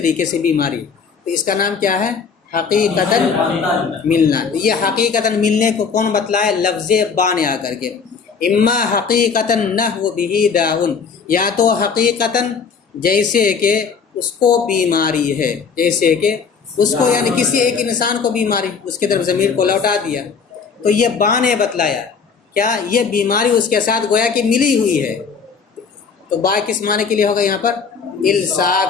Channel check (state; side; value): quieter; right; 5.7 dB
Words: سے بیماری، تو اس کا نام کیا ہے؟ حقیقتاً ملنا. یہ حقیقتاً ملنے کو کون بتلائے؟ لفظ با نے آ کر کے. اما حقیقتاً نحو بہ داؤن، یا تو حقیقتاً جیسے کہ اس کو بیماری ہے، جیسے کہ اس کو یعنی کسی ایک انسان کو بیماری، اس کی طرف ضمیر کو لوٹا دیا. تو یہ با نے بتلایا کیا؟ یہ بیماری اس کے ساتھ گویا کہ ملی ہوئی ہے. تو با کس معنی کے لیے ہوگا یہاں پر؟